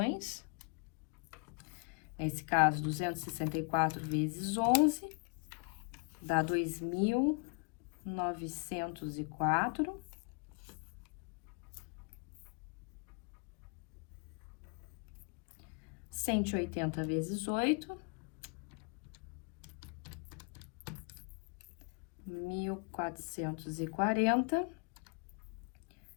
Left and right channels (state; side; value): quieter; right; 36.7 dB